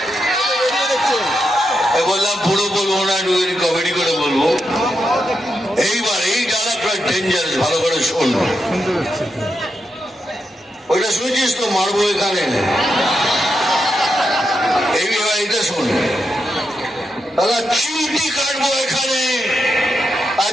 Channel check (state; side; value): normal; both; correlation 0.85